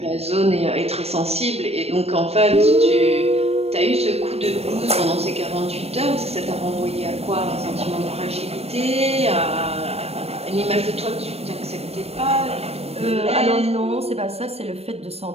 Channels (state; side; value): late; left; 0.30 ms